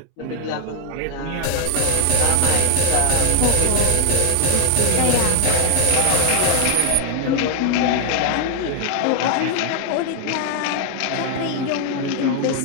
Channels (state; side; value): different; both; correlation 0.00